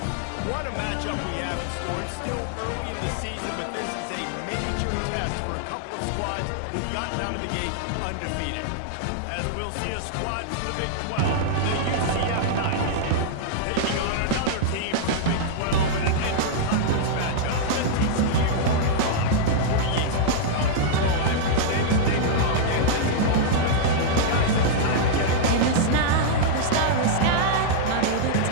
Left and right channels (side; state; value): both; different; correlation -0.02